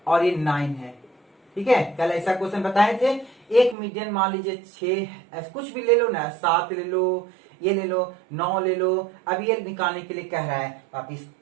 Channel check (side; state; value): left; drops out; at 3.8 s